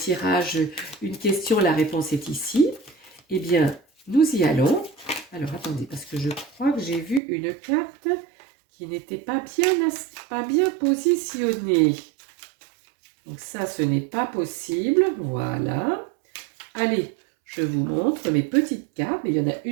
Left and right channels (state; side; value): drops out; left; at 7.2 s